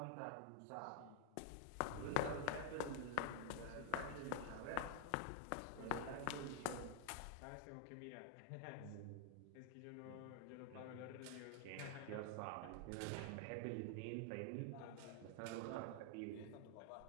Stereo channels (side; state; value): both; different; correlation 0.00